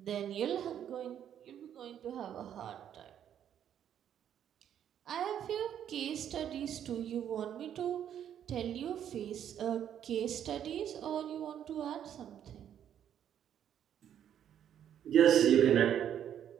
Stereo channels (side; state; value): left; quieter; 9.8 dB